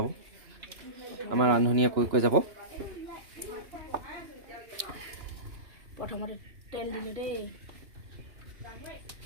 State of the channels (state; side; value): late; left; 2.9 ms